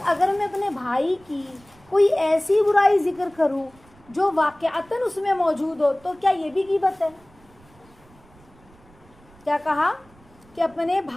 اگر میں اپنے بھائی کی کوئی ایسی برائی ذکر کروں جو واقعتاً اس میں موجود ہو تو کیا یہ بھی غیبت ہے؟ کیا کہا کہ اپنے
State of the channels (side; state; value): right; noise; rumble, 28 dB below the sound